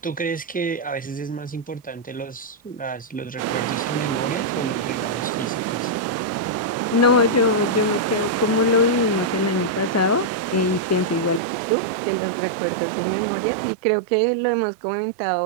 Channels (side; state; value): left; drops out; at 11.4 s